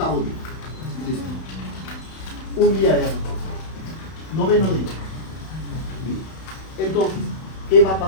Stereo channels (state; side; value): late; right; 31 ms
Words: día. Listo. Un día de agricultura. Noveno día. Entonces, ¿qué va a